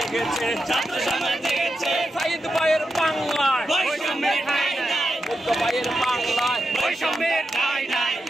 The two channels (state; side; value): normal; both; correlation 0.88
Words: ছাত্র সমাজ জেগেছে, সাইদ ভাইয়ের বাংলায়, বৈষম্যের ঠাঁই নাই, বুদ্ধ ভাইয়ের বাংলায়, বৈষম্যের ঠাঁই নাই,